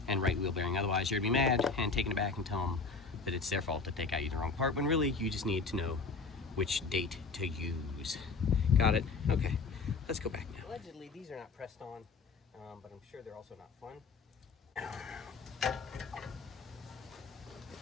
and right wheel bearing. Otherwise you're gonna be mad and taking it back and tell them that it's their fault to take out you the wrong part, when really you just need to know which date to use. Got it? Okay, let's go back now. Allegedly, these are not pressed on, but I'm sure they're also not fun.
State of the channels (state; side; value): quieter; right; 4.4 dB